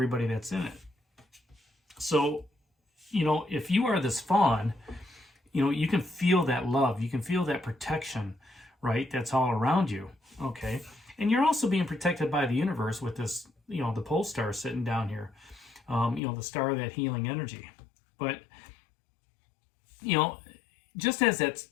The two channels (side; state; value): right; drops out; at 16.2 s